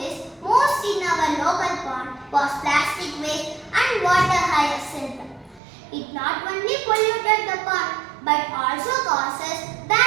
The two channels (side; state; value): left; drops out; at 5.6 s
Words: most in our local pond was plastic waste and water hyacinth. It not only polluted the pond but also causes